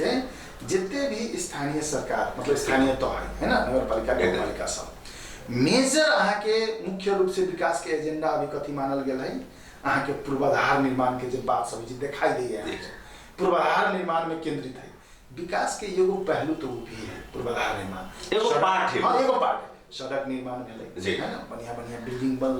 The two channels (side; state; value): both; identical; correlation 1.00